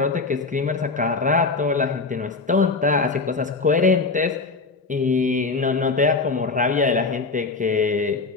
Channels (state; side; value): quieter; right; 4.1 dB